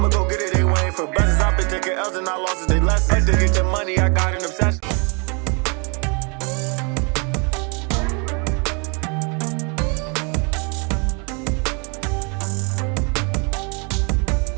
go get it, they waiting for blessings. I've been taking L's and I lost they lessons. To get the money, I got an obsession.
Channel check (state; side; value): quieter; left; 33.9 dB